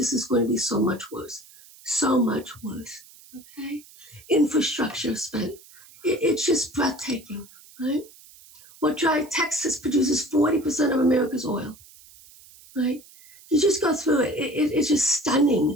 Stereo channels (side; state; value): right; noise; hiss, 23 dB below the sound